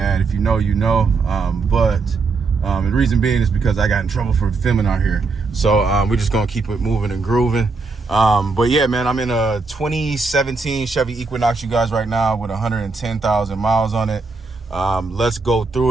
If you know, you know. And the reason being is because I got in trouble for filming out here. So we're just going to keep it moving and grooving. But yeah, man, I'm in a 2017 Chevy Equinox, you guys, right now with 110,000 miles on it. Let's go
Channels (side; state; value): left; quieter; 4.0 dB